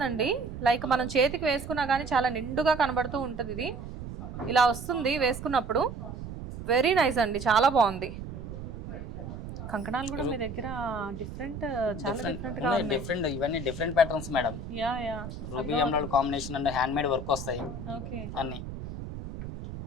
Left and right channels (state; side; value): noise; right; rumble, 9 dB below the sound